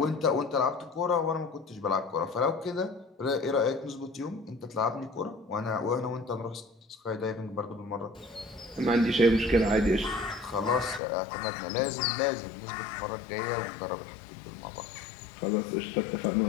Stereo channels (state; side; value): drops out; right; at 11.0 s